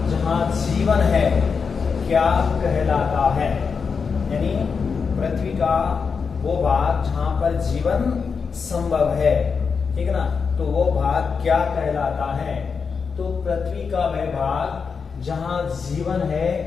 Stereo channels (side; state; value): right; quieter; 5.6 dB